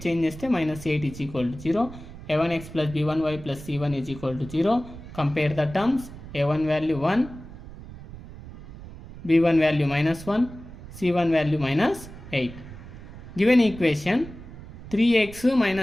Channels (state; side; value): noise; right; rumble, 15 dB below the sound